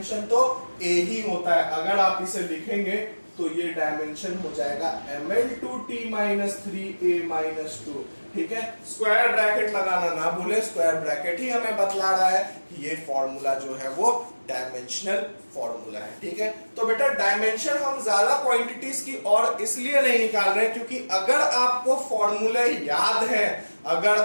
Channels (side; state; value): both; inverted; correlation -1.00